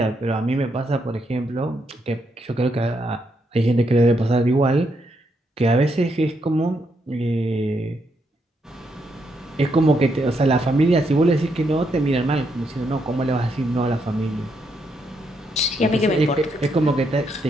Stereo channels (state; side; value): normal; both; correlation 0.78